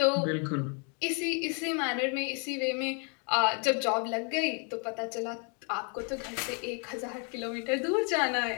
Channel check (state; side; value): quieter; right; 38.0 dB